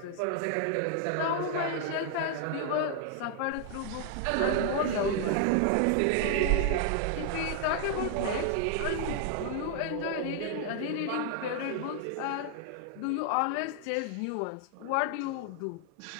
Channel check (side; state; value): both; different; correlation 0.00